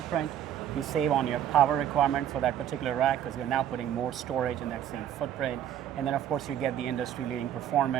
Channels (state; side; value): quieter; left; 10.4 dB